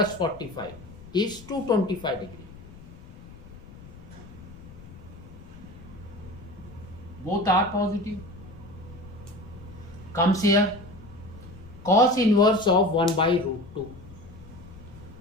45 is 225 degree. Both are positive. Comes here cos inverse of 1 by root 2.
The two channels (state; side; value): noise; left; rumble, 18 dB below the sound